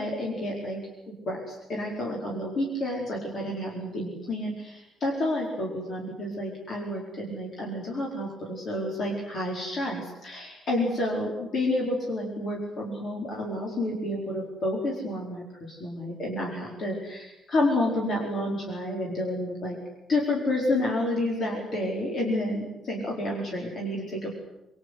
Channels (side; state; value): both; normal; correlation 0.65